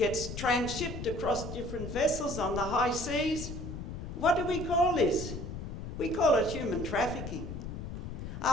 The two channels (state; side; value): noise; left; rumble, 7 dB below the sound